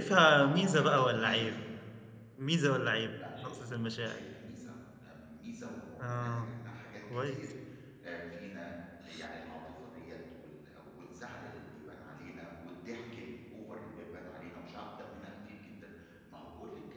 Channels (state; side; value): identical; both; correlation 1.00